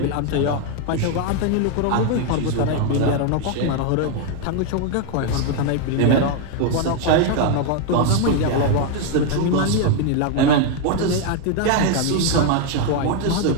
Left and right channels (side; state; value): both; different; correlation 0.01